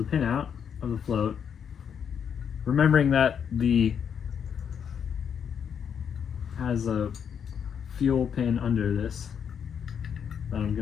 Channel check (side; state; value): right; quieter; 7.7 dB